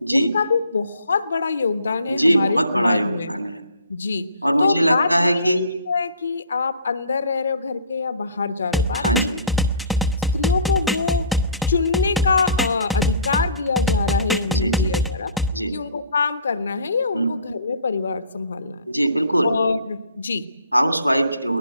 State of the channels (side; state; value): both; inverted; correlation -0.51